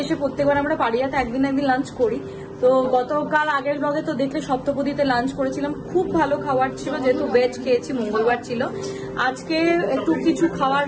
এসে প্রত্যেকবার আমরা পাড়িয়াতে একদিন লাঞ্চ করি। তো গতকাল আগের ব্লগে তো দেখলে সপ্তপদীতে লাঞ্চ করেছিলাম, খুব ভালো খাবার ছিল, যেহেতু ভেজ খেয়েছি, মঙ্গলবার ছিল। আজকে একটু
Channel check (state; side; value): identical; both; correlation 1.00